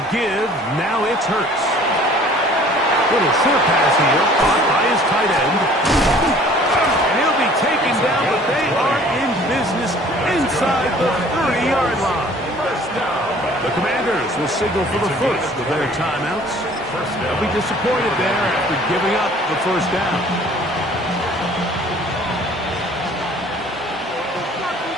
give. Now it's Hurts. Little short pass here, caught by his tight end. And he'll be taken down, but they are in business inside the 30-yard line. The Commanders will signal for the first of their timeouts. They'll be disappointed there after giving up the first down.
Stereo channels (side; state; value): both; normal; correlation 0.52